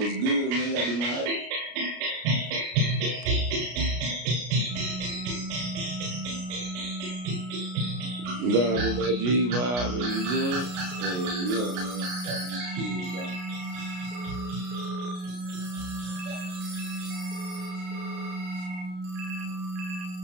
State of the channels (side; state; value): left; late; 33 ms